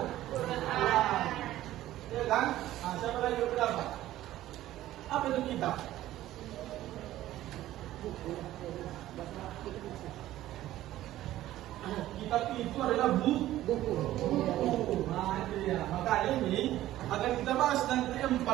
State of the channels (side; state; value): left; quieter; 14.4 dB